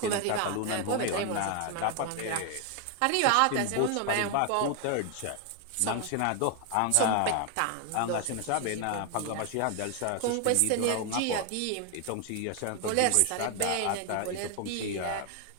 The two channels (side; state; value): both; different; correlation 0.00